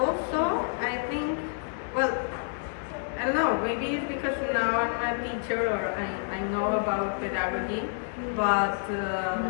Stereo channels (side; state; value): right; silent; 59 dB below the other